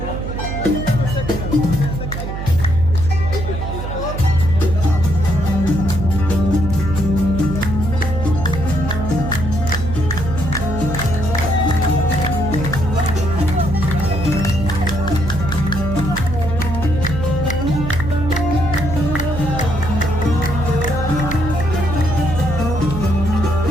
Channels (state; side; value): noise; right; hum, 5 dB below the sound